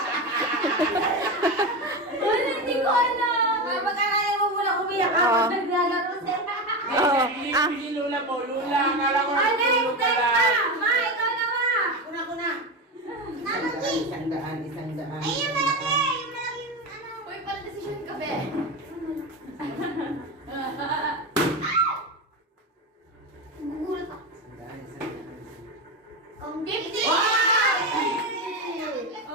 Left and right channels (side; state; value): both; normal; correlation 0.18